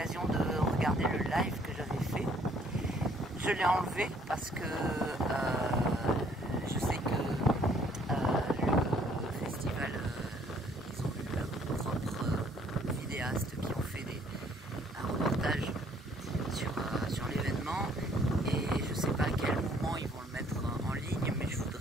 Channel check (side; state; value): both; normal; correlation 0.62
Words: de regarder le live que j'avais fait. Je l'ai enlevé parce que je sais que le festival, ils ont eu leurs propres vidéastes qui ont fait un reportage sur l'événement, et je ne sais pas à quel moment ils vont le mettre en ligne, mais je